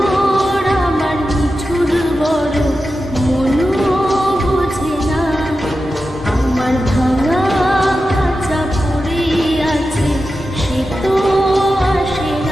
আমার মিঠুর বড় মনো বোঝে না, আমার ভাঙা খাঁচা পড়ে আছে সে তো আসে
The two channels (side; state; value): both; normal; correlation 0.91